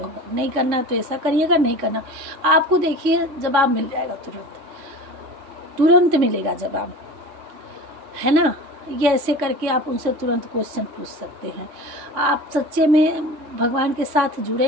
होगा, नहीं करना तो ऐसा करिएगा, नहीं करना। आपको देखिए जवाब मिल जाएगा, तुरंत मिलेगा जवाब, है ना। ये ऐसे करके आप उनसे तुरंत क्वेश्चन पूछ सकते हैं। आप सच्चे में भगवान के साथ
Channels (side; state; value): left; late; 3.6 ms